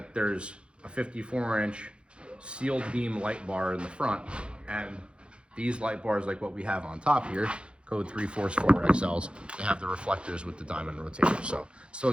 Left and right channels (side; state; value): left; late; 0.057 ms